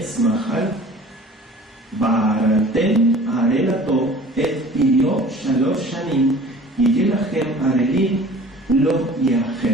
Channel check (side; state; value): both; normal; correlation 0.46